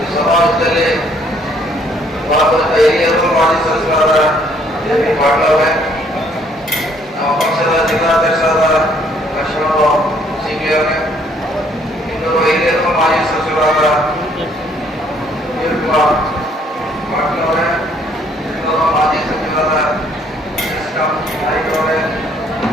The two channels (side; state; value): both; normal; correlation 0.64